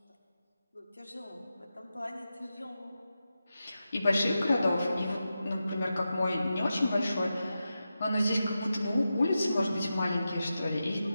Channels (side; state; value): both; inverted; correlation -0.91